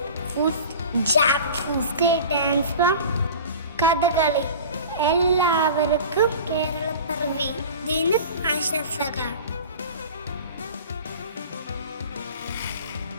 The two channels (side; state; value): both; inverted; correlation -0.38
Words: food jackfruit. State dance from Kathakali. എല്ലാവർക്കും കേരളപ്പിറവി ദിന ആശംസകൾ.